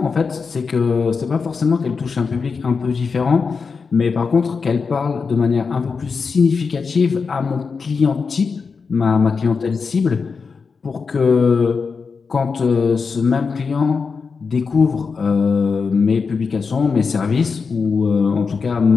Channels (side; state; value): right; quieter; 5.1 dB